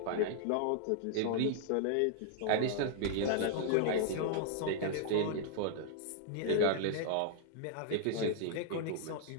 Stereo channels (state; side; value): different; both; correlation -0.01